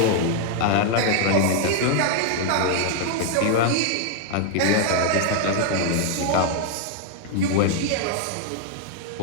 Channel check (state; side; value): different; both; correlation 0.00